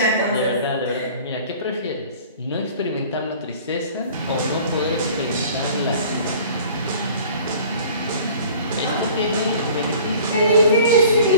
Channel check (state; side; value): inverted; both; correlation -0.47